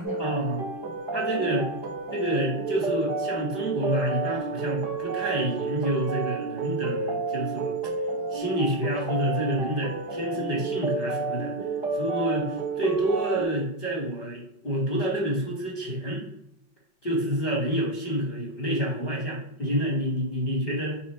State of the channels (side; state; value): right; late; 5.1 ms